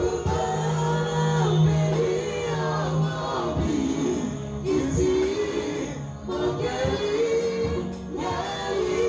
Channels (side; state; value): both; identical; correlation 1.00